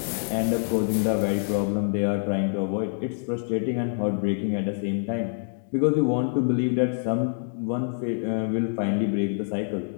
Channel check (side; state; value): right; silent; digital silence